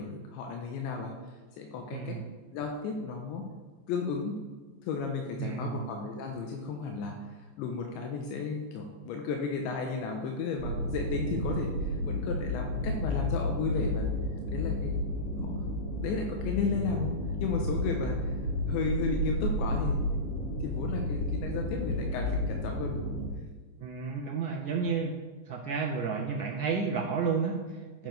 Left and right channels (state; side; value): late; right; 15 ms